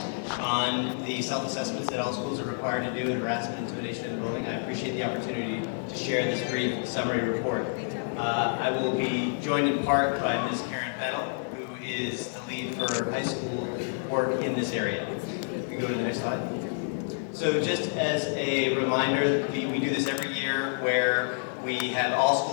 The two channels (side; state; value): right; silent; digital silence